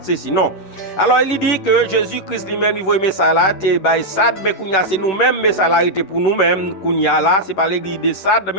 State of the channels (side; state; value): right; late; 10 ms